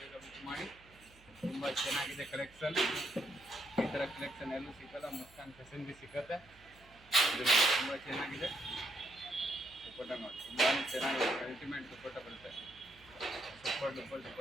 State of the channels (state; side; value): noise; right; hum, 25 dB below the sound